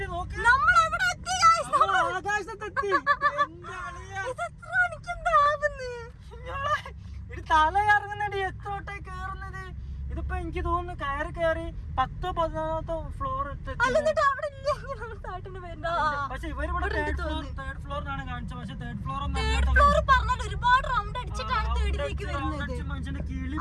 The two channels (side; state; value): both; identical; correlation 1.00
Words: നോക്കി ആകാശത്തെത്തി. തല കറങ്ങുന്നടി. എത്രോട്ടെ കേറുന്നത്? ഇതിപ്പോ എനിക്ക് തോന്നുന്നു കയറി 10-11 ഫ്ലോർ. പക്ഷെ ഇവരിവിടെ തേർഡ് ഫ്ലോറിനാണ് കാണിച്ചത്. പക്ഷെ തേർഡ് ഫ്ലോർ ഒരുപാട് റൗണ്ട് അടിച്ചിട്ടാണ് തേർഡിലേക്ക് വരുന്നത്.